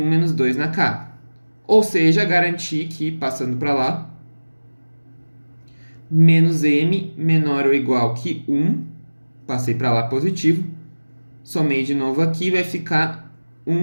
menos 2 na K. Ou seja, garantir que, passando para lá, menos M menor ou igual que 1, passei para lá positivo, somei de novo aqui, vai ficar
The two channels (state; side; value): inverted; both; correlation -1.00